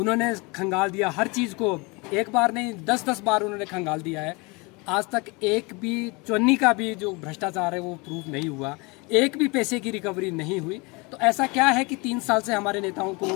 खंगाल दिया हर चीज़ को। एक बार नहीं, 10-10 बार उन्होंने खंगाल दिया है। आज तक एक भी चुन्नी का भी जो भ्रष्टाचार है वो प्रूफ नहीं हुआ, एक भी पैसे की रिकवरी नहीं हुई। तो ऐसा क्या है कि 3 साल से हमारे नेताओं को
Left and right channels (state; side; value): quieter; right; 27.5 dB